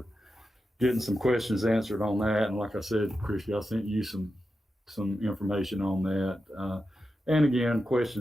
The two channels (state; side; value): normal; both; correlation 0.89